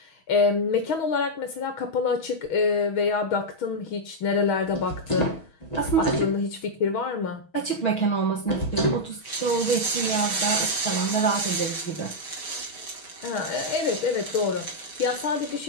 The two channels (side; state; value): right; late; 6.3 ms